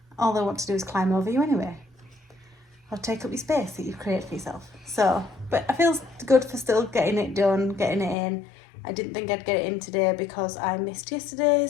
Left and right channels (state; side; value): drops out; right; at 8.2 s